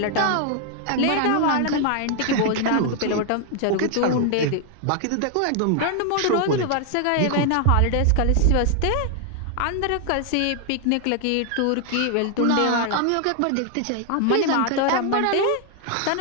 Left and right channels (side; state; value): both; different; correlation 0.00